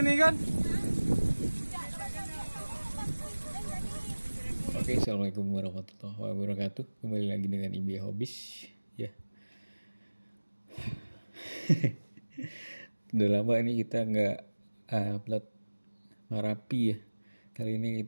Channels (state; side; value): inverted; both; correlation -1.00